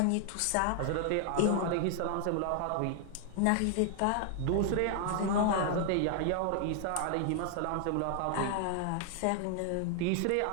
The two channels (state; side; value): different; both; correlation 0.00